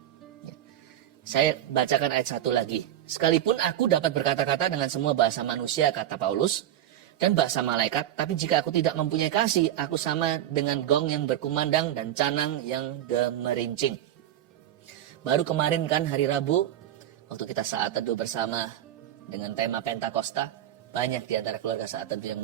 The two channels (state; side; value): quieter; left; 11.9 dB